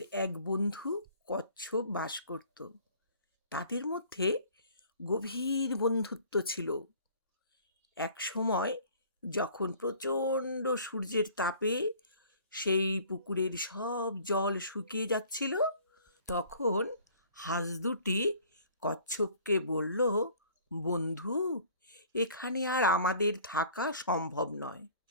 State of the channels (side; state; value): both; inverted; correlation -0.52